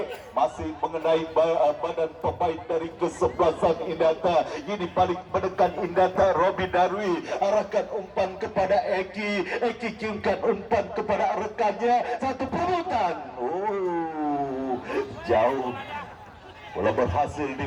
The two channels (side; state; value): both; identical; correlation 1.00